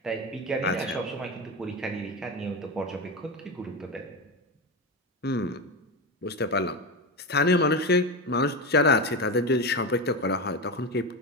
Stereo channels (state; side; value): normal; both; correlation 0.18